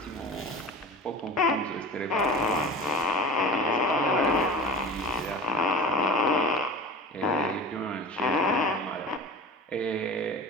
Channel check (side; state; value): both; normal; correlation 0.34